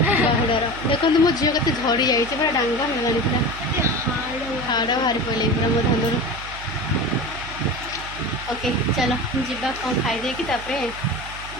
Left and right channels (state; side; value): noise; right; hum, 14 dB below the sound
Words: ବାହୁଡ଼ାର ଦେଖନ୍ତୁ ମୋ ଝିଅ କେତେ ଝଡ଼ି ଯାଇଛି, ପୁରା ଡାଙ୍ଗ ହେଇଗଲାଣି, ପୁରା ହାଡ଼ ବାହାରି ପଡ଼ିଲେ ପୁରା ମୋ ଧାନରୁ। ଓକେ ଚାଲ ଯିବା, କ'ଣ ଖାଇଦେଇକି ତାପରେ